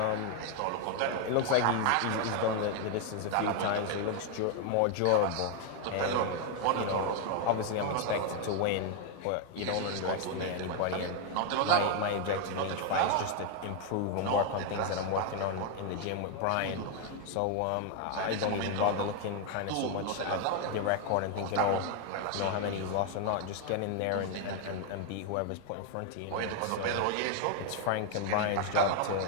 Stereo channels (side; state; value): both; different; correlation 0.00